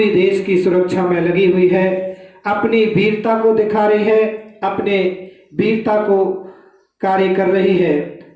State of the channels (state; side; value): identical; both; correlation 1.00